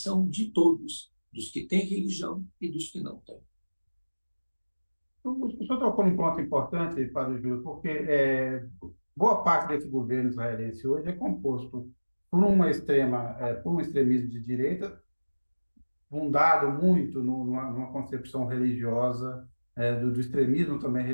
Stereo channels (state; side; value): inverted; both; correlation -1.00